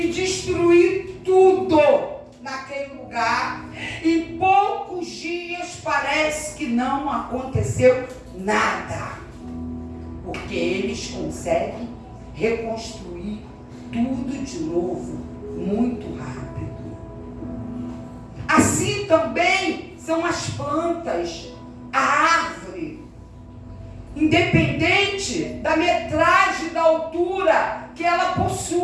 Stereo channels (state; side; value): identical; both; correlation 1.00